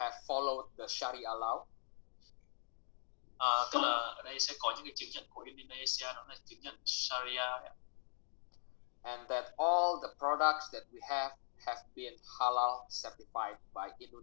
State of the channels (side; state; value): right; silent; digital silence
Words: followed the Sharia law. Tức là ở đây sẽ có những cái chứng nhận của Indonesia, đó là chứng nhận Sharia đấy. And that all the products that we have been halal certified by